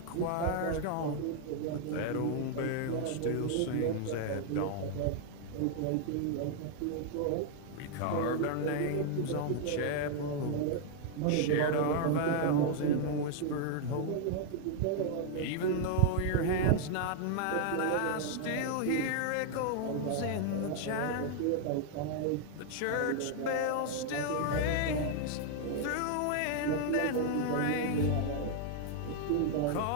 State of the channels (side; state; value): both; different; correlation 0.00